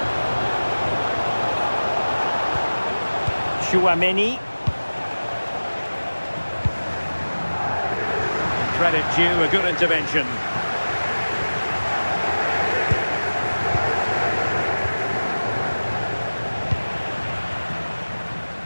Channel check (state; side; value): inverted; both; correlation -1.00